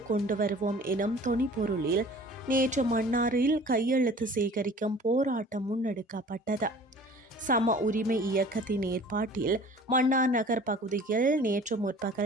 கொண்டு வருவோம் எனும் தொனிப்பொருளில் நேற்று மன்னாரில் கையெழுத்து சேகரிக்கும் போராட்டம் முன்னெடுக்கப்பட்டது. சம உரிமை இயக்கத்தின் ஏற்பாட்டில் மன்னார் நகர் பகுதியில் நேற்று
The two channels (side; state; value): both; normal; correlation 0.47